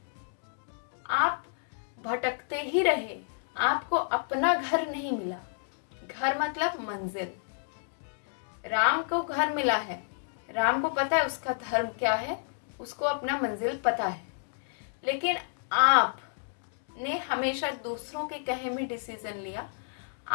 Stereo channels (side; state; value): right; silent; digital silence